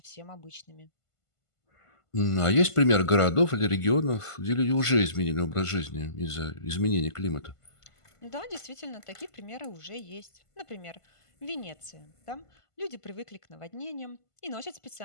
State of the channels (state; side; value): late; right; 1.5 ms